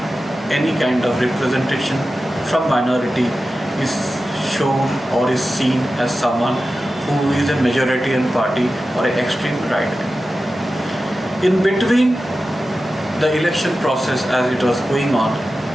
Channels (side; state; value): both; normal; correlation 0.93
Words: any kind of representation from minority is shown or is seen as someone who is a majoritarian party or an extreme right. In between the election process as it was going on,